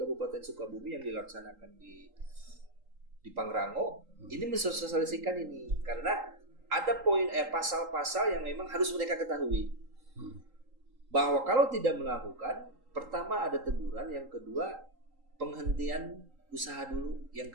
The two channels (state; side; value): late; left; 3.8 ms